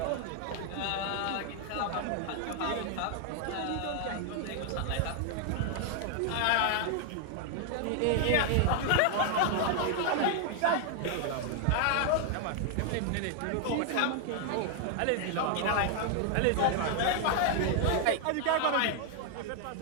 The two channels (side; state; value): both; different; correlation 0.00